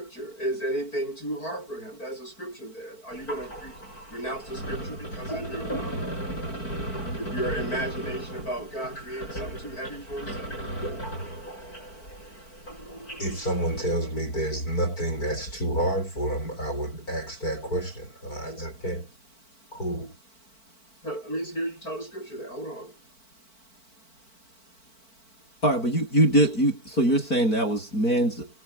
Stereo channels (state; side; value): late; right; 4.5 ms